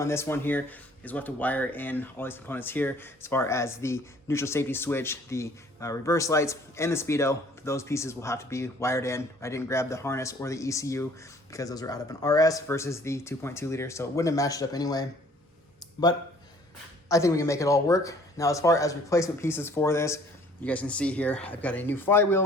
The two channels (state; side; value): normal; both; correlation 0.56